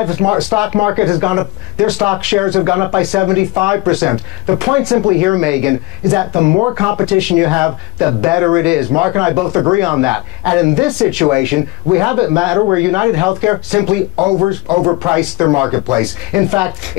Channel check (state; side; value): quieter; right; 21.5 dB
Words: stock market has gone up, their stock shares have gone up by 75%. The point simply here, Megan, is that the more competition you have, the better it is. Mark and I both agree on that. And in this situation, we have a matter where United Healthcare simply overpriced their marketplace. In fact,